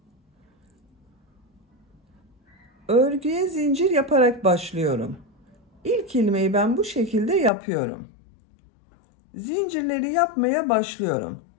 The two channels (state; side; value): drops out; right; at 7.5 s